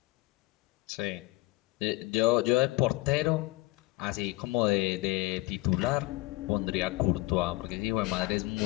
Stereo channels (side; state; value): right; quieter; 20.9 dB